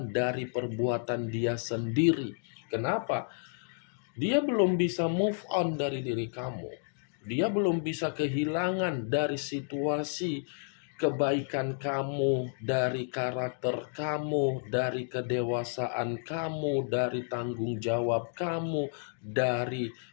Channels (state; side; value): silent; right; digital silence